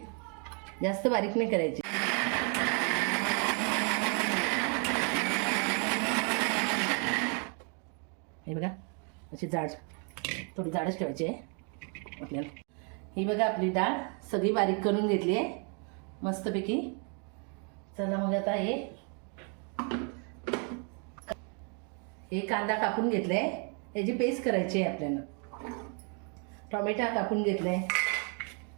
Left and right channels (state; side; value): quieter; left; 38.3 dB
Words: जास्त बारीक नाही करायची। हे बघा अशी जाड, थोडी जाडच ठेवायची आहे आपल्याला। ही बघा आपली डाळ सगळी बारीक करून घेतली आहे मस्तपैकी। चला मग आता हे कांदा कापून घेतलाय, याची पेस्ट करायची आहे आपल्याला। टोमॅटो कापून घेतलाय,